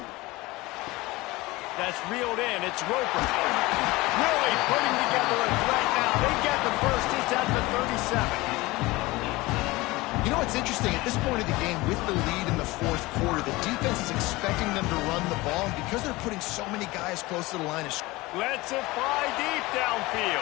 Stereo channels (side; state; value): right; quieter; 21.0 dB